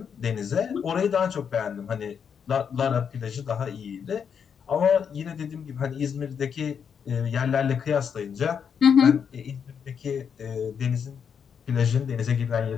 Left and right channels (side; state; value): right; quieter; 7.2 dB